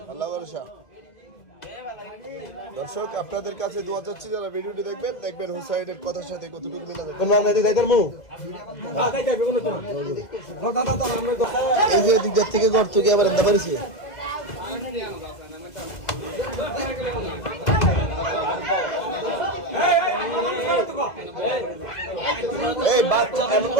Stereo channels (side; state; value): right; late; 1.9 ms